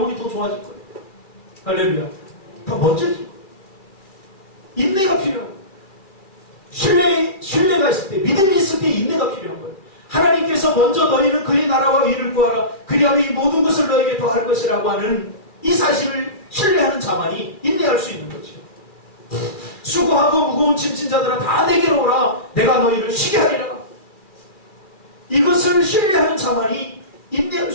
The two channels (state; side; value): late; right; 2.4 ms